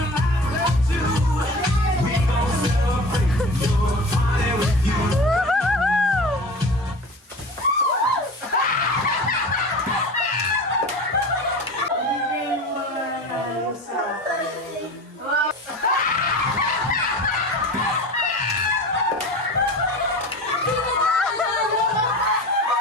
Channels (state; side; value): normal; both; correlation 0.35